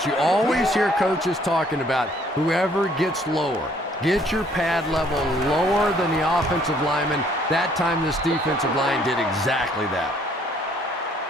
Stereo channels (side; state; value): both; normal; correlation 0.62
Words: You always hear coaches talking about whoever gets lower. Get your pad level lower than the offensive lineman. That time this defensive line did exactly that.